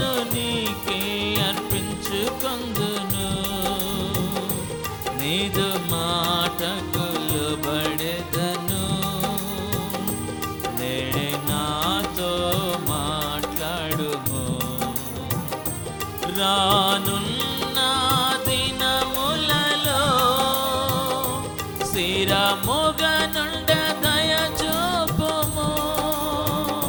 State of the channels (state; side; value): identical; both; correlation 1.00